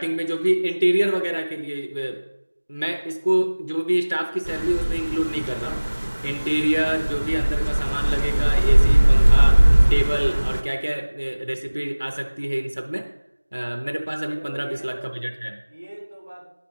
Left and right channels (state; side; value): inverted; both; correlation -1.00